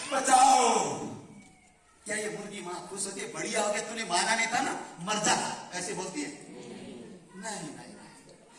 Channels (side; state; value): both; identical; correlation 1.00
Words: बचाओ। क्या ये मुर्गी मां खुश होती है, बढ़िया हो गया तूने माना नहीं था ना, मर जा, ऐसे बोलती है? नहीं नहीं,